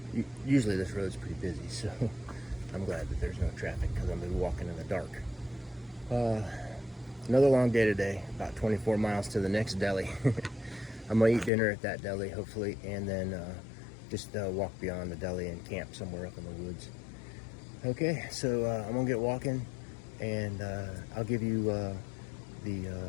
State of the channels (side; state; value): right; drops out; at 11.5 s